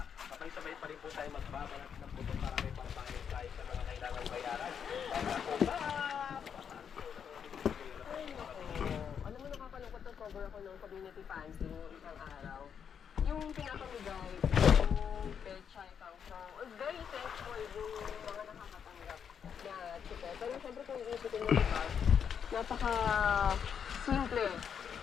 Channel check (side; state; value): right; quieter; 7.5 dB